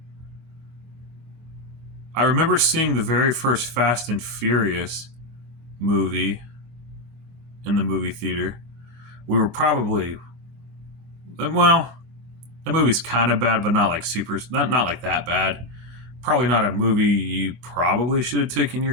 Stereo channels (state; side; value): late; left; 24 ms